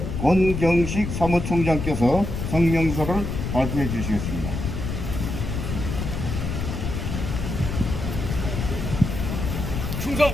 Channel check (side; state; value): left; noise; rumble, 4 dB below the sound